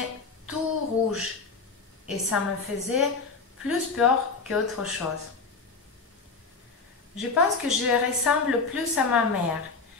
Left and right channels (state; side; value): quieter; right; 4.4 dB